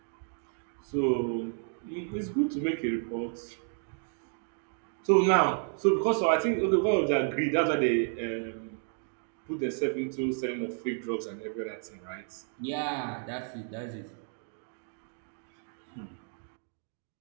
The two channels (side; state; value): left; silent; 57 dB below the other